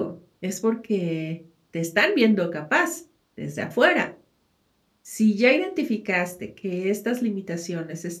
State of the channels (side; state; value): both; identical; correlation 1.00